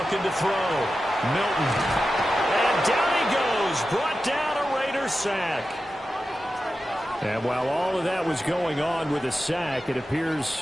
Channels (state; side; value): normal; both; correlation 0.92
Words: to throw. Milton. And down he goes. Brought down a Raiders sack. And while all of that was going on with a sack, it appears,